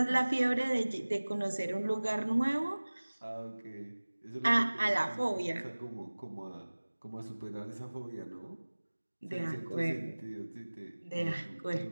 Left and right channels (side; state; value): both; inverted; correlation -1.00